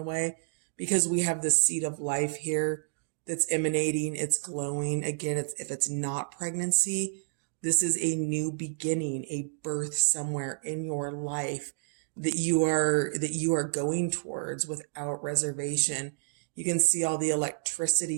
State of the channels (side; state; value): left; silent; digital silence